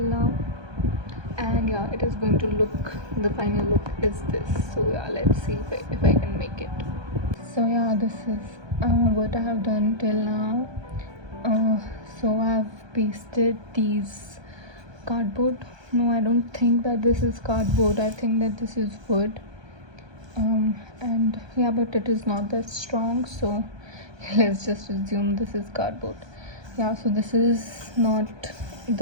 now. And yeah, it is going to look, the final look is this. So yeah, let's see if I can make it. So yeah, this is what I have done till now. So I've pasted these cardboard. No, I don't think that this is cardboard. I think that this is wood. And yeah, but it is not that strong, so let's just assume this is cardboard. Yeah, so this is not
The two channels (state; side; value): late; left; 1.2 ms